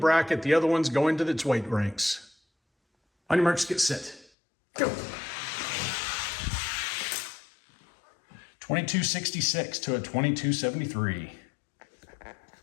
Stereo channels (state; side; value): drops out; right; at 4.3 s